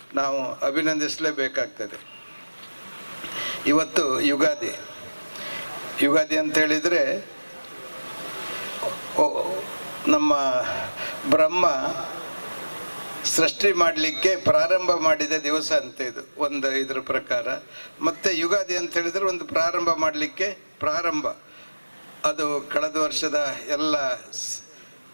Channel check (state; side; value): inverted; both; correlation -1.00